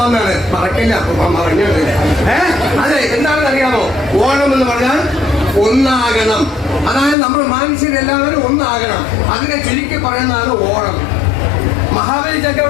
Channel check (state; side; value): drops out; right; at 7.2 s